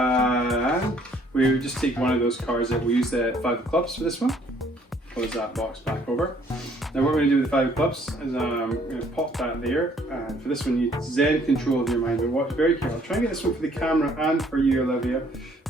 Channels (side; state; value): both; normal; correlation 0.62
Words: We just take one of those cards that we use the 5 of clubs for this one. Close that box back over. Now what we're going to do with the 5 of clubs is I'm going to pop that there, and for this one you zen control of your mind, but watch very carefully. Try and get this one for the camera and for you, Olivia.